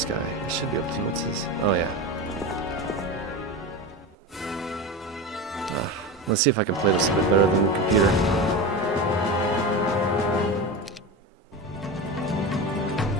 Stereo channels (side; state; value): both; normal; correlation 0.24